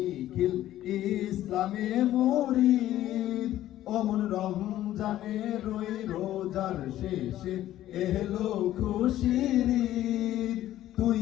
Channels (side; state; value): right; quieter; 13.4 dB